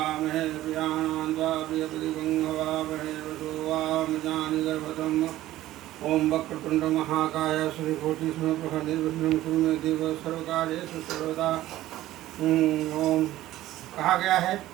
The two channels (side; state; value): left; quieter; 15.0 dB